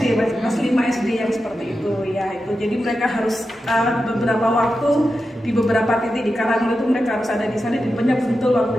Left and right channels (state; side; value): normal; both; correlation 0.90